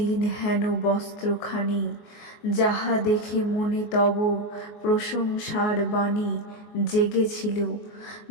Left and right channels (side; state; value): right; late; 24 ms